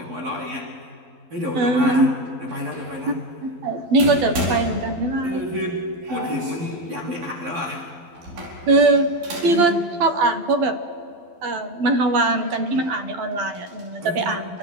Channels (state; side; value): late; left; 12 ms